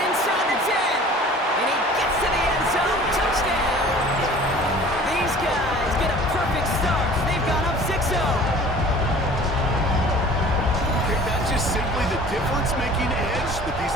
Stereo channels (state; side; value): normal; both; correlation 0.46